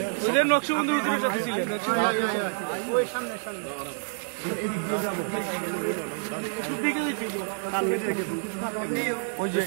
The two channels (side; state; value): left; silent; digital silence